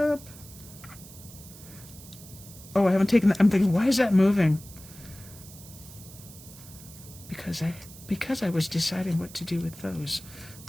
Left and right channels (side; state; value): right; noise; hiss, 18 dB below the sound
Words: Oh, I haven't taken that. I'm thinking, why is that moving? Because I was deciding what to do with those.